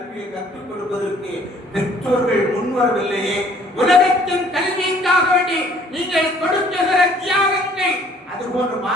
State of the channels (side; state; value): both; normal; correlation 0.57